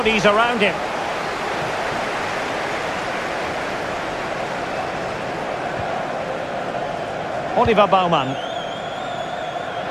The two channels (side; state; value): both; identical; correlation 1.00